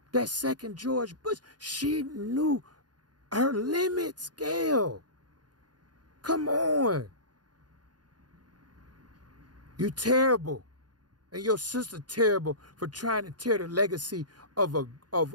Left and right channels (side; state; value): left; late; 0.69 ms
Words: that second George Bush, she knew her limits, Gayle. Come on. You terrible. And your sister terrible for trying to tear the legacy of